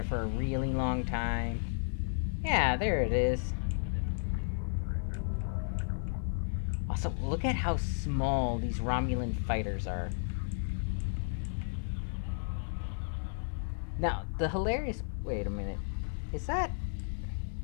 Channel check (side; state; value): right; silent; digital silence